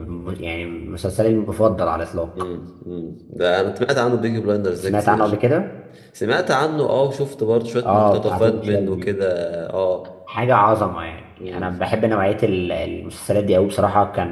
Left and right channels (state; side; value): identical; both; correlation 1.00